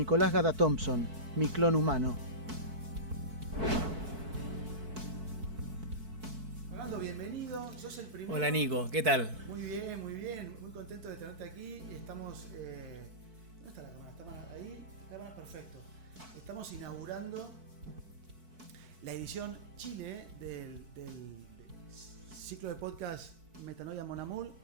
Gada Thompson, mi clon humano. Fernando, bienvenido, sos el primero. Hola Nico, ¿qué tal? Muy bien, muy contento de tenerte aquí. Estamos, ¿dónde está la cámara? ¿Está ahí? Cámara, perfecto. Estamos inaugurando la edición Chile del ciclo de podcast Metanoia Mon Amour,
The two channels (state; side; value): late; left; 4.6 ms